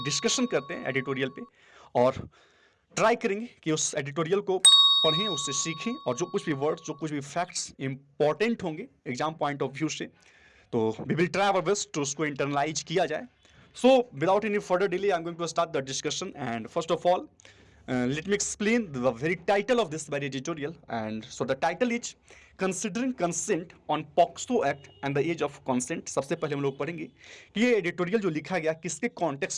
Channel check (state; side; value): identical; both; correlation 1.00